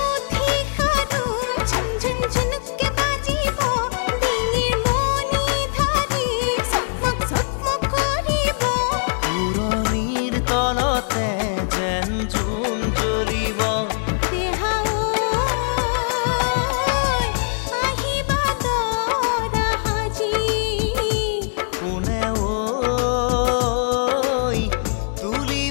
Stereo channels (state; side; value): silent; right; digital silence